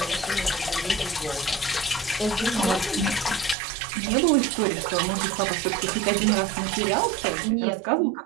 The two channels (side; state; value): left; drops out; at 3.6 s